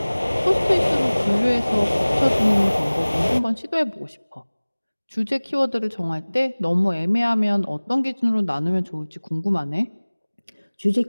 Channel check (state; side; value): inverted; both; correlation -1.00